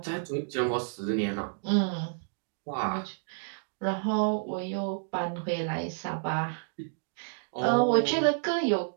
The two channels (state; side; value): silent; left; digital silence